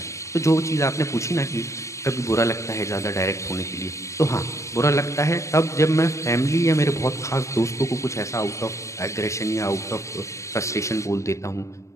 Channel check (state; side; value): late; right; 0.15 ms